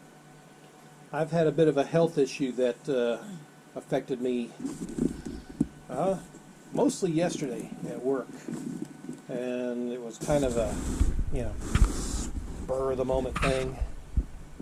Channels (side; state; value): both; identical; correlation 1.00